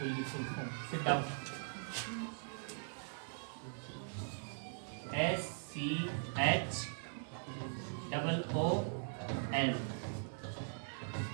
की full form. Sit down. SCHOOL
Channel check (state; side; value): silent; left; digital silence